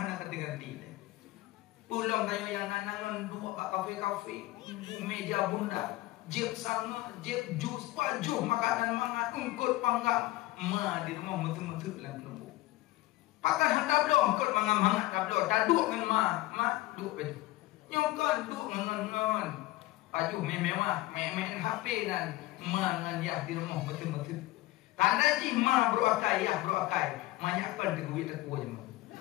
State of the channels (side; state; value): right; quieter; 17.9 dB